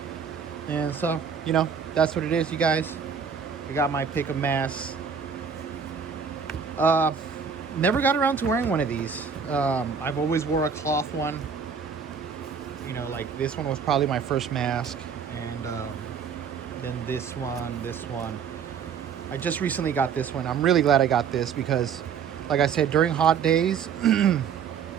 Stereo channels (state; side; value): quieter; left; 6.6 dB